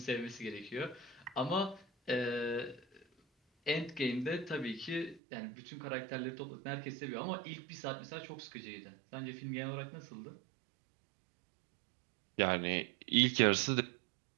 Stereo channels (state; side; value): drops out; left; at 5.2 s